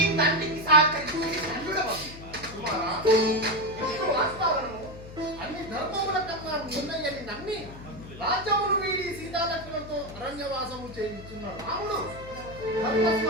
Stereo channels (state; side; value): noise; left; hum, 15 dB below the sound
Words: తండ్రికి సహకరించి ధన్యుడవగు. కుమారా, ఇప్పుడు వాస్తవాలను అన్ని ధర్మముల కన్నా ఉన్నయని నమ్మి రాజ్యమును వీడి సీతాలక్ష్మణులతో అరణ్యవాసము చేయించున్న రాముడు